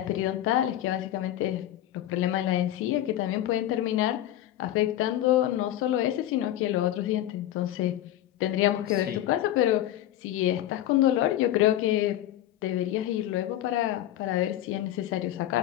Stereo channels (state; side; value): quieter; right; 13.1 dB